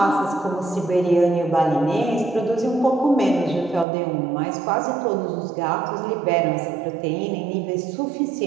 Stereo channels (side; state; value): left; drops out; at 3.9 s